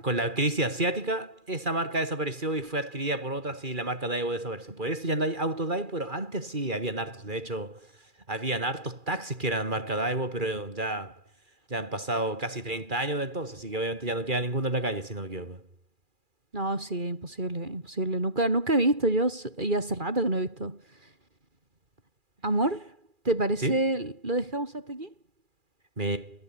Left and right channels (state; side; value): late; left; 2.4 ms